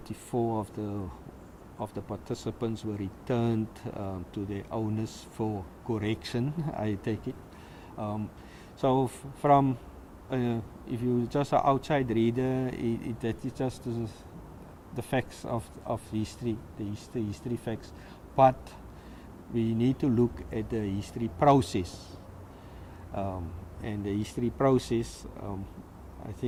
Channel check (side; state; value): both; identical; correlation 1.00